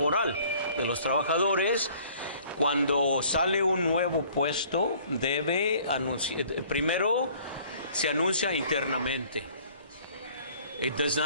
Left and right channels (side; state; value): both; inverted; correlation -0.55